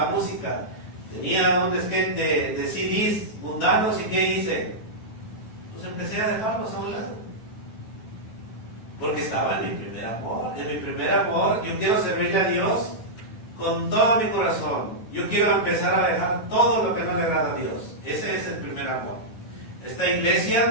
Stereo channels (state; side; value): late; right; 9.2 ms